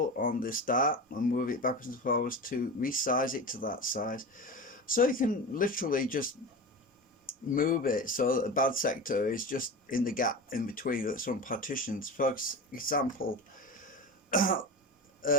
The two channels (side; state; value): both; normal; correlation 0.27